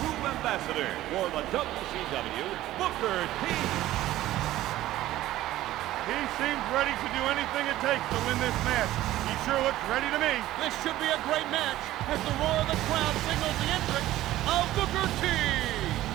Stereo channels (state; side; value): quieter; left; 15.0 dB